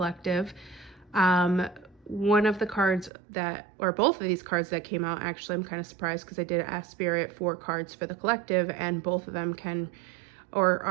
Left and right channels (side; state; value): left; drops out; at 3.1 s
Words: One of the cards or both of these cards that came out, actually, I'm kind of surprised because I did ask Spirit for cards for the collective, and both of them